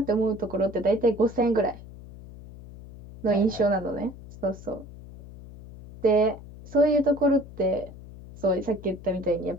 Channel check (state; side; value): noise; left; hum, 17 dB below the sound